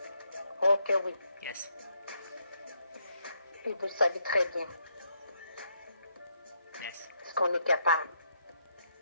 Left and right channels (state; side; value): inverted; both; correlation -0.76